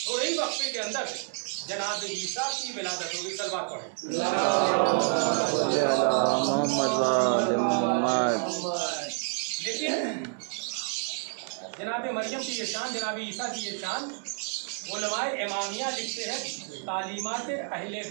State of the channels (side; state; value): left; silent; 56 dB below the other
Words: ہی وقفے کے اندر جناب عیسیٰ کی ولادت ہوگی. سلوات پڑھیں. لیکن جناب مریم کی یہ شان، جناب عیسیٰ کی یہ شان، علماء امامیہ لکھتے ہیں تعلیمات اہل